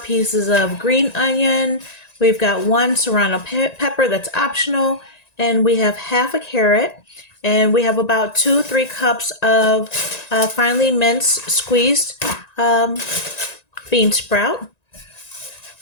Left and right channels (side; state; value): right; late; 1.9 ms